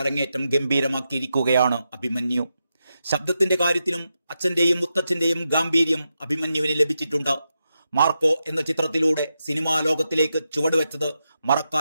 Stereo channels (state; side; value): inverted; both; correlation -0.87